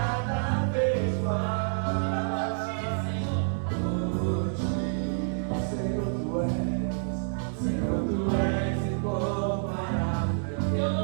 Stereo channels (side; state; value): left; silent; 59 dB below the other